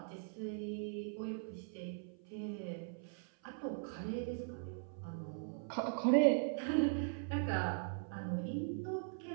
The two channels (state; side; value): silent; left; 51 dB below the other